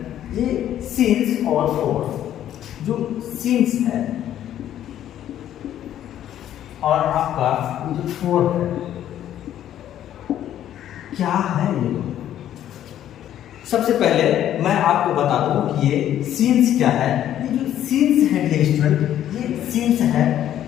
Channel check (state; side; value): quieter; right; 11.4 dB